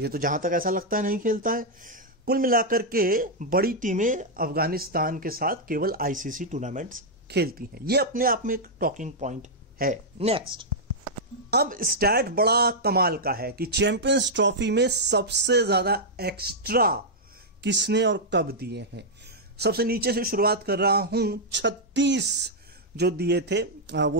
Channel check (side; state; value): both; normal; correlation -0.05